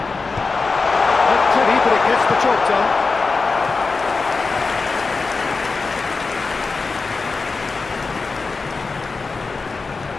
Not pretty, but it gets the job done.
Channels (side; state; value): right; quieter; 4.2 dB